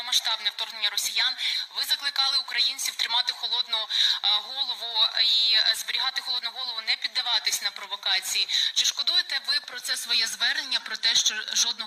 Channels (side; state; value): both; identical; correlation 1.00